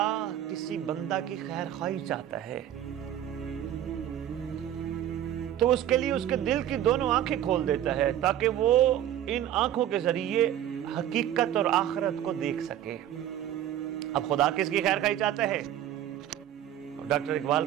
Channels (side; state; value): left; quieter; 11.4 dB